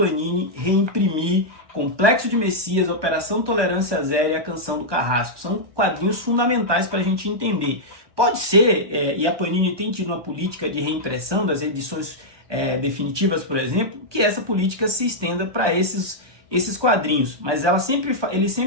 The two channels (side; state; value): left; late; 1.2 ms